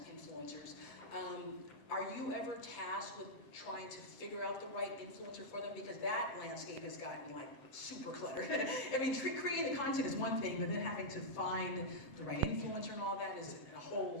influencers. Are you ever tasked with trying to figure out the right influencer for them? Because that landscape has gotten like super cluttered. I mean, creating the content is one thing, but then having to find the right influencer and all that is a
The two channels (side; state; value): right; late; 8.1 ms